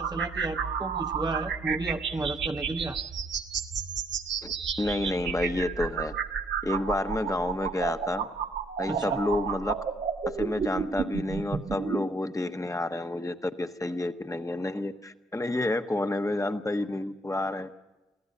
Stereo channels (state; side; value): normal; both; correlation 0.67